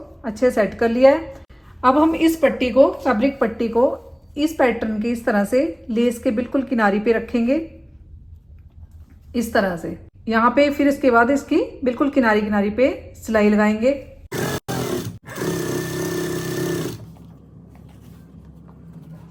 से सेट कर लिया है। अब हम इस पट्टी को, फैब्रिक पट्टी को इस पैटर्न के इस तरह से लेस के बिल्कुल किनारे पे रखेंगे, इस तरह से यहाँ पे। फिर इसके बाद इसकी बिल्कुल किनारी पे सिलाई लगाएंगे।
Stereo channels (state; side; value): identical; both; correlation 1.00